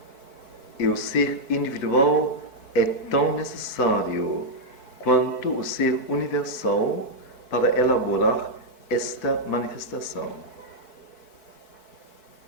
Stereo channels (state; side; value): late; right; 4.6 ms